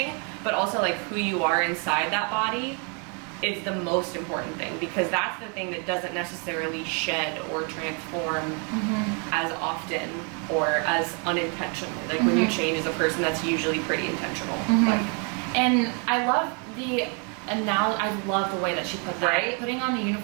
But also like who you are inside that body is the most important thing, because that's the thing that doesn't necessarily shed or transform as often or as unintentionally. Like when you change as a person, that's usually pretty intentional. Like, and I love the I love the way that she put that, Right? putting on the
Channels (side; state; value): left; quieter; 36.8 dB